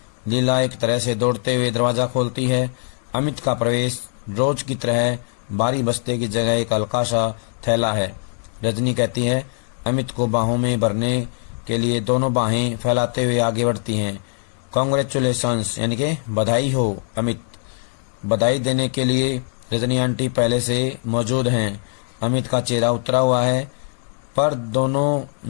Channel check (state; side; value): silent; right; digital silence